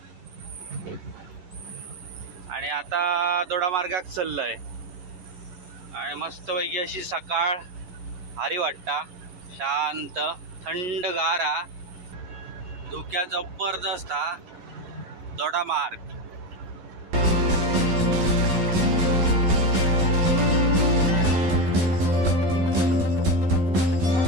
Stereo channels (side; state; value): left; late; 12 ms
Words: आणि आता दोडामार्गाक चाललंय. आणि मस्त पैकी अशी सकाळ भारी वाटता. शांत थंडगार हा. धुक्या जबरदस्त हा दोडामार्ग.